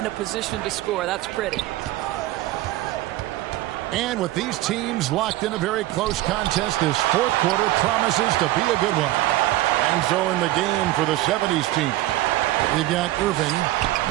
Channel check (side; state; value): left; quieter; 16.3 dB